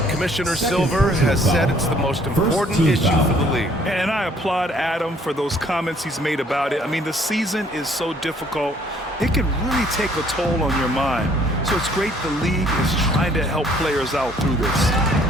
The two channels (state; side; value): normal; both; correlation 0.61